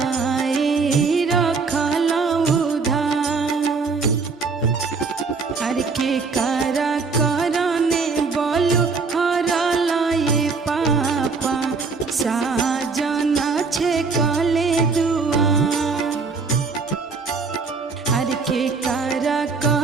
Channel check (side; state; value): left; quieter; 4.6 dB